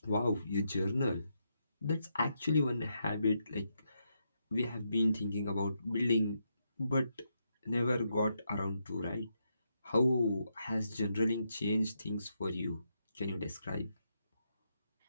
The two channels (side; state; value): both; inverted; correlation -0.81